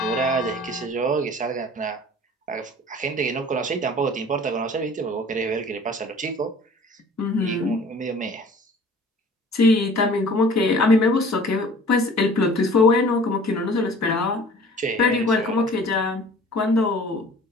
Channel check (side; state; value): both; normal; correlation 0.47